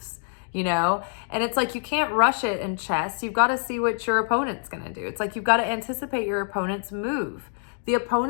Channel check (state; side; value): silent; right; digital silence